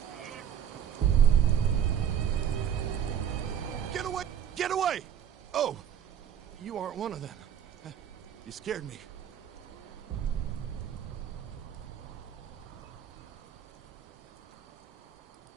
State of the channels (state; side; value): quieter; left; 9.1 dB